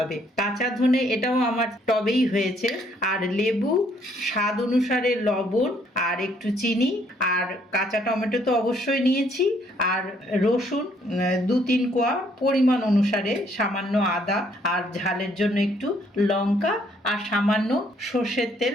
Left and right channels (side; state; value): both; normal; correlation 0.67